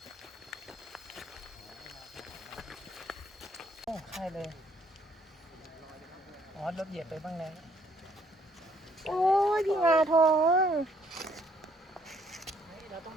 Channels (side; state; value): both; normal; correlation 0.65